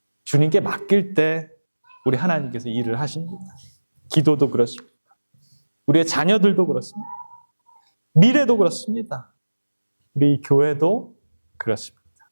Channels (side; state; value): both; inverted; correlation -1.00